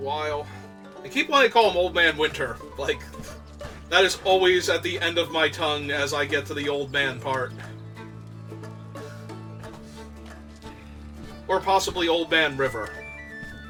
I keep wanting to call him Old Man Winter. Like, that is always at the end of my tongue as I get to the Old Man part. Or possibly Old Man River.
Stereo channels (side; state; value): both; identical; correlation 1.00